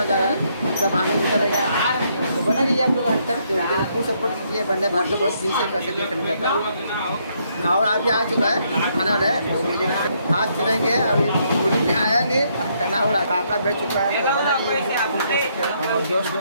जा रहा है, सब आगे निकलेगा। तो बना रही है आप लोग आज तक, तो फुल सपोर्ट कीजिए। वंदे भारत को बहुत दिन से कैसे देखने जाता है और अभी आ चुका है खाना है। आज चलेंगे, अभी पुलिस में आया नहीं, टना हो रहा काका बैठ चुका है। तो बना रही है और दोस्त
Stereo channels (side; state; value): both; inverted; correlation -0.73